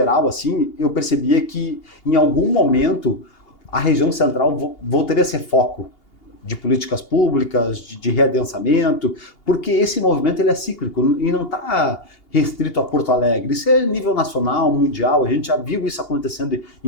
assim, eu percebia que em algum momento a região central voltaria a ser foco de políticas públicas, de readensamento, porque esse movimento ele é cíclico e não está restrito a Porto Alegre. Isso é nível nacional, mundial, a gente já viu isso acontecendo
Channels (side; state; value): right; late; 2.8 ms